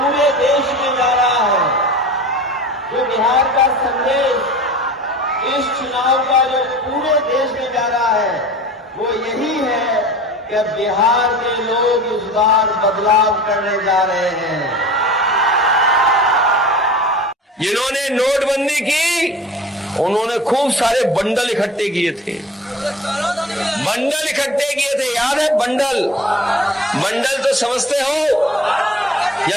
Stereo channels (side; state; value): both; normal; correlation 0.41